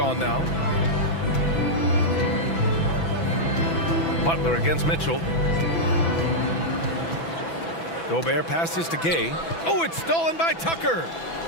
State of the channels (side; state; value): right; late; 6.0 ms